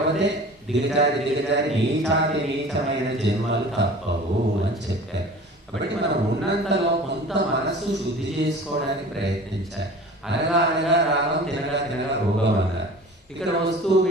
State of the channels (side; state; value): both; normal; correlation 0.41